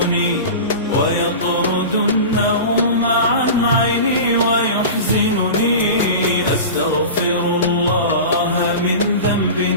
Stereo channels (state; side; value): inverted; both; correlation -0.31